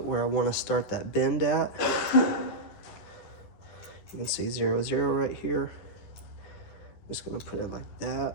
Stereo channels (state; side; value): late; right; 10 ms